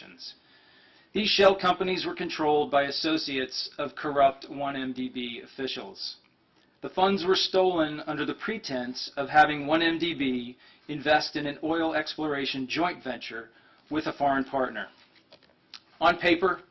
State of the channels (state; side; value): identical; both; correlation 1.00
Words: These shell companies were controlled by associates of corrupt 1MDB officials. The funds were stolen under the pretense of having 1MDB invest in an oil exploration joint venture with a foreign partner. On paper,